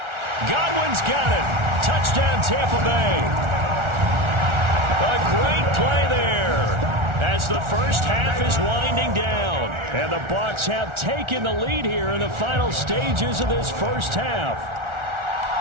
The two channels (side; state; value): left; late; 1.4 ms